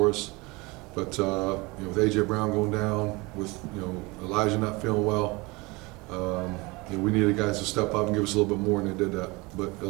us. But you know, with AJ Brown going down, with Elijah not feeling well, you know, we needed guys to step up and give us a little bit more, and they did that. But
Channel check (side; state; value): left; quieter; 24.6 dB